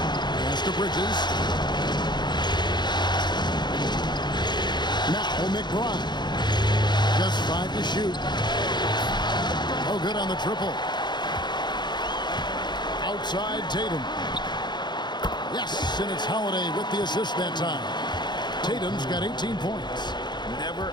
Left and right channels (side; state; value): right; late; 0.21 ms